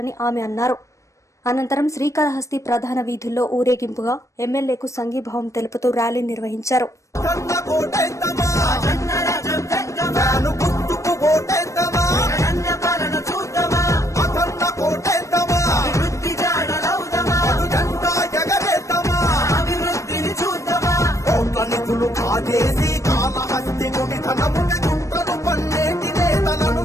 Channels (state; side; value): late; right; 0.15 ms